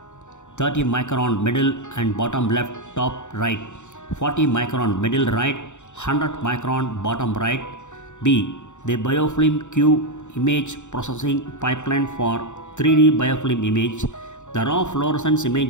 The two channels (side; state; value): right; late; 0.84 ms